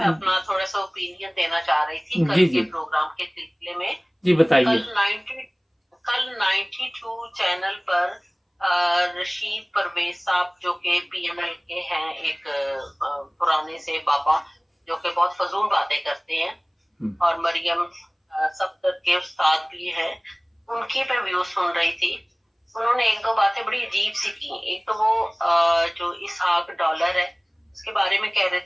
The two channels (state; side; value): identical; both; correlation 1.00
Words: अपना थोड़ा सा ओपिनियन देना चाह रही थी कल जी के जी प्रोग्राम के सिलसिले में। जी कल बताइए। 92 चैनल पर रशीद परवेज साहब जो कि पीएनएल के हैं, एक पुराने से बाबा जो कि बहुत फजूल बातें करते हैं, और मरियम सफदर के उस्ताद भी हैं, उनकी मैं व्यू सुन रही थी। उन्होंने एक दो बातें बड़ी अजीब सी की। एक तो वो जो इसहाक डॉलर है उसके बारे में कह रहे